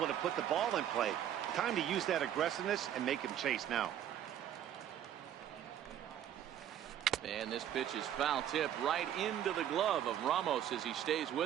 to put the ball in play. Time to use that aggressiveness and make him chase now. And this pitch is foul tip right into the glove of Ramos as he stays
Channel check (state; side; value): quieter; left; 10.6 dB